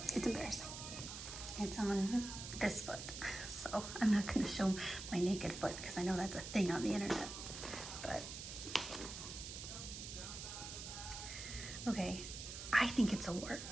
It's embarrassing. It's on this foot, so I'm not going to show my naked foot because I know that's a thing on the internet. But okay, I think it's a wart.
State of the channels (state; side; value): noise; right; hiss, 8 dB below the sound